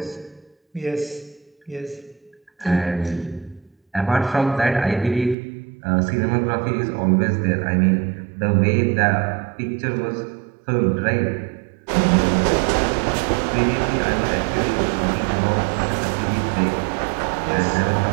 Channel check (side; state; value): left; drops out; at 5.4 s